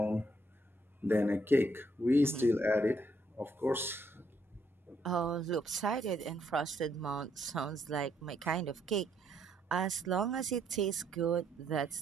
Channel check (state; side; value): normal; both; correlation 0.72